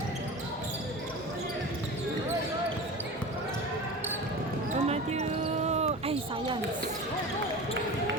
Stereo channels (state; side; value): normal; both; correlation 0.32